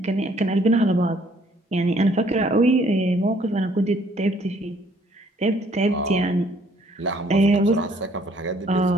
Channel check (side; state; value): both; normal; correlation 0.62